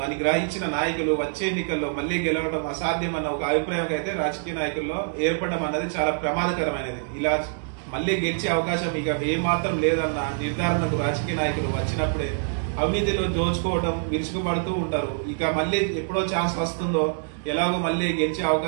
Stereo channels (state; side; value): silent; left; digital silence